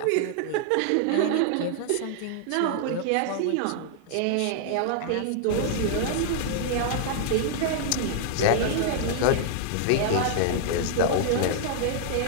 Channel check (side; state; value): both; different; correlation 0.00